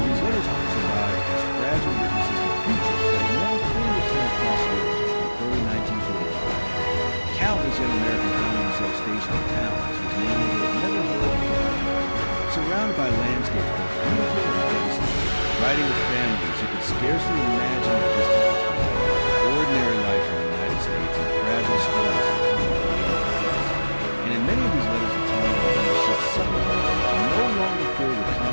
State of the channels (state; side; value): inverted; both; correlation -1.00